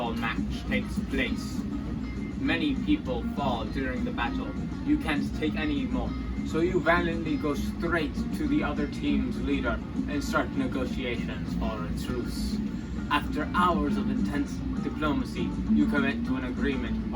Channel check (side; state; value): both; identical; correlation 1.00